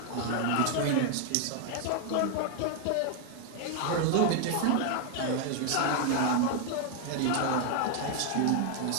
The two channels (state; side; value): different; both; correlation 0.00